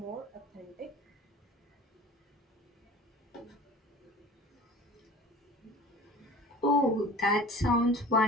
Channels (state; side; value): normal; both; correlation 0.42